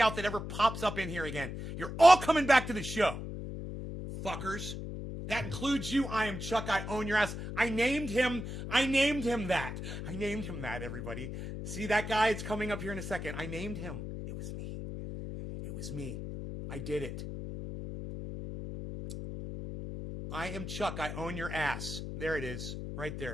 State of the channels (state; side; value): noise; left; hum, 7 dB below the sound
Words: that ever pops up in here again. You're all coming back to the show. Fuckers. That includes you. I am Chuck. I own your ass. I named him that. I named him that, everybody. See that guy? It's coming up here in a second. I named him. It was me. It was me. I did it. I am Chuck. I own your ass. There it is. Right